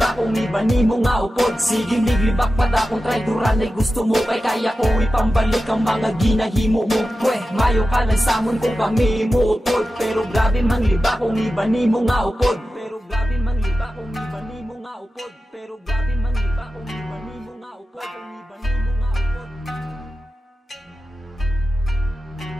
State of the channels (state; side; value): normal; both; correlation 0.93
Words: kung iba ni mo nga upod. Sige mig, libak pa da kung traidoran ay gusto mo. Kay kaya ko ipambalik ang mga ginahimo mo. Pweh, mayo ka lang samon kung kami mo utod. Pero grabe mang liba kung iba ni mo nga upod. Pero grabe mang liba kung iba ni mo nga upod. Pero grabe mang liba kung iba ni mo nga upod.